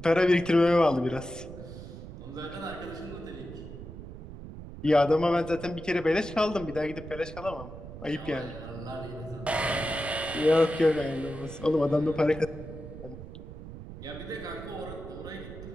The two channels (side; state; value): right; noise; rumble, 12 dB below the sound